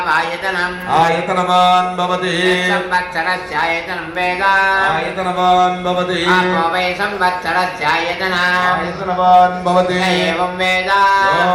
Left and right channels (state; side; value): identical; both; correlation 1.00